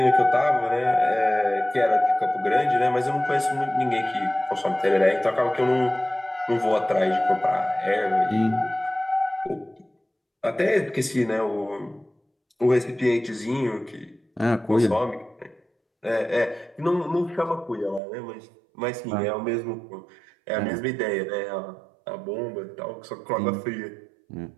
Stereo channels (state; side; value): drops out; left; at 18.0 s